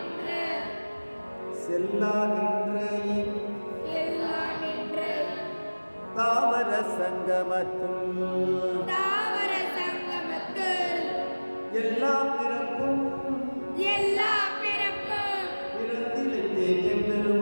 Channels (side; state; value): both; inverted; correlation -1.00